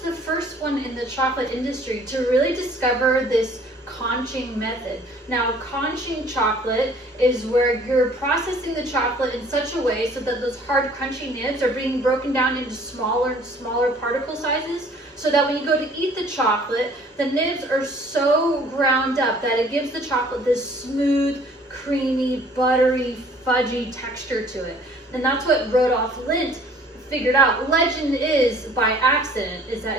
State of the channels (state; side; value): normal; both; correlation 0.54